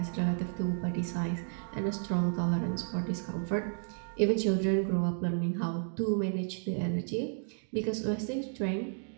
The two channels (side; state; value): left; silent; digital silence